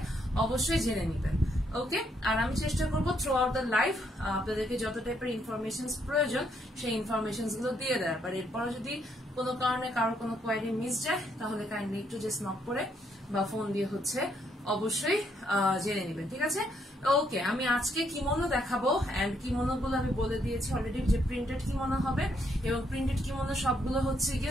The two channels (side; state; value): both; normal; correlation 0.73